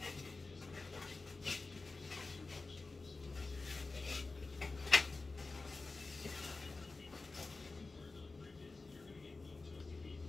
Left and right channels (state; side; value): quieter; right; 3.7 dB